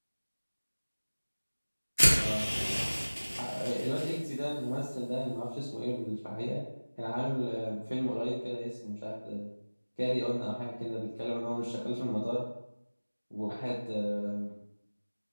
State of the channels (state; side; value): inverted; both; correlation -1.00